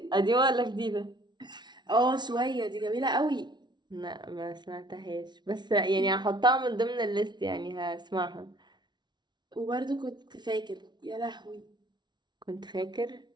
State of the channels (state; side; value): late; left; 0.21 ms